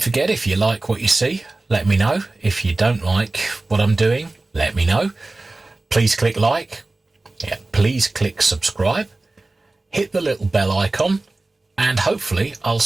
forget, if you like what you see, let me know. If you don't like what I'm doing, let me know. Please click like. Yeah, please click subscribe, hit the little bell icon, and hopefully I'll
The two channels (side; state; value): left; quieter; 3.1 dB